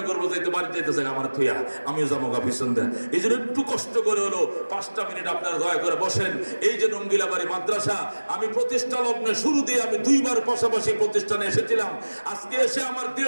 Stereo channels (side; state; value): both; inverted; correlation -1.00